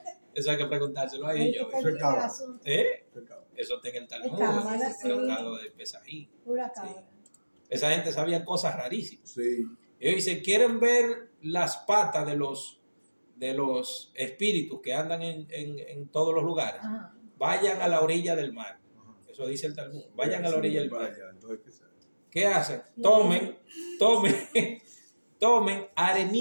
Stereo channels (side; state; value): both; inverted; correlation -1.00